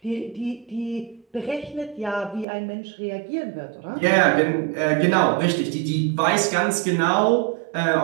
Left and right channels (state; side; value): drops out; left; at 2.5 s